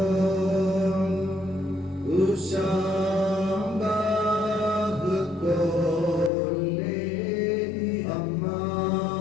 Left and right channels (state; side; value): drops out; right; at 6.3 s